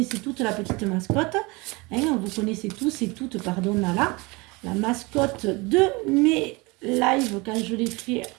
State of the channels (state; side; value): quieter; left; 25.6 dB